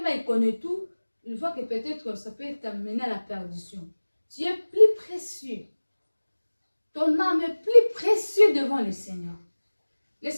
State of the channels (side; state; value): both; inverted; correlation -1.00